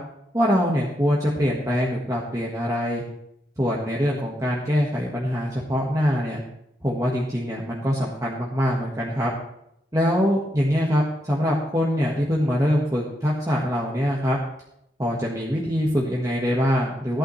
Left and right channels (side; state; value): both; normal; correlation 0.82